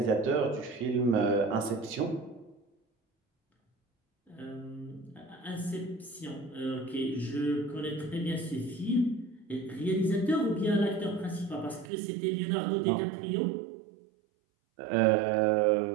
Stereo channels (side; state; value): left; drops out; at 11.9 s